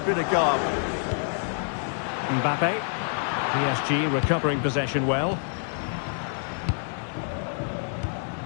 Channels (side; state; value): right; silent; 57 dB below the other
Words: of guile. Mbappe. PSG recovering possession well.